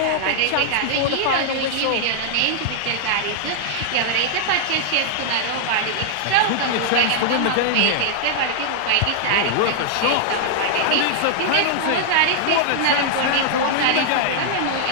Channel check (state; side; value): different; both; correlation -0.01